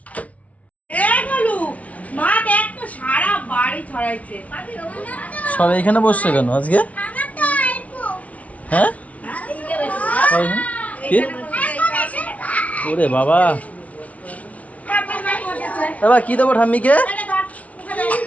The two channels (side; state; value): right; late; 0.067 ms